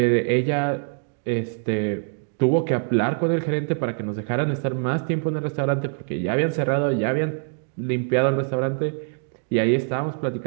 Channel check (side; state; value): left; silent; digital silence